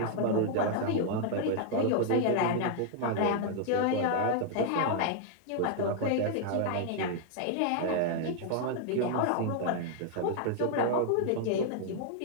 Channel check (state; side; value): different; both; correlation -0.01